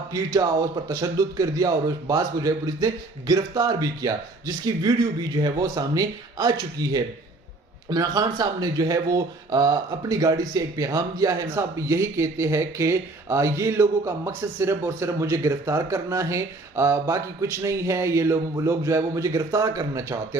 पीटा और उस पर तशद्दुद कर दिया और उस बास को जो है पुलिस ने गिरफ्तार भी किया, जिसकी वीडियो भी जो है वो सामने आ चुकी है। इमरान खान साहब ने जो है वो अपनी गाड़ी से एक पैगाम दिया है। साहब यही कहते हैं कि ये लोगों का मकसद सिर्फ और सिर्फ मुझे गिरफ्तार करना है, बाकी कुछ नहीं है। ये लोग जो है वो मुझे गिरफ्तार करना चाहते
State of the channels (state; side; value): quieter; left; 3.1 dB